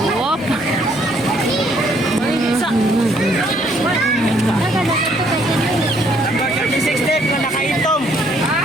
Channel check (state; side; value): noise; right; hum, 26 dB below the sound